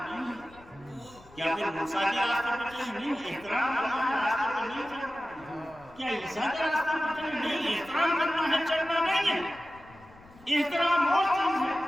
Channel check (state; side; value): noise; left; rumble, 24 dB below the sound